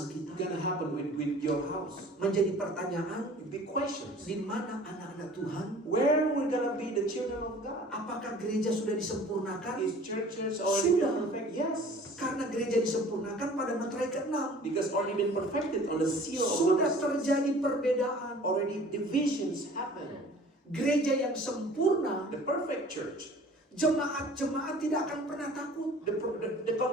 kita? gonna happen with your house? Menjadi pertanyaan, Big questions. di mana anak-anak Tuhan? Where we're gonna be the children of God? Apakah gereja sudah disempurnakan? Is churches already Sudah. been perfect? Yes. Karena gereja disempurnakan pada materai ke-6. Because already been perfected on the seal of Sudah God. terjadi perbedaan. Already divisions happen. Gereja yang sempurna, The perfect church. jemaat-jemaat tidak akan pernah takut. The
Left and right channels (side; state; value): both; normal; correlation 0.47